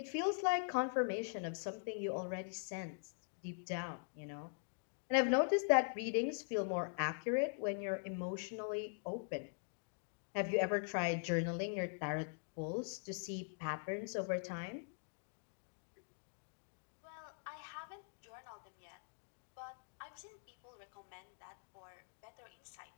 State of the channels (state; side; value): silent; right; digital silence